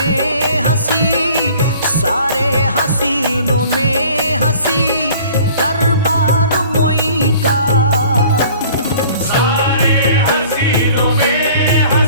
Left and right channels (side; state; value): both; inverted; correlation -0.50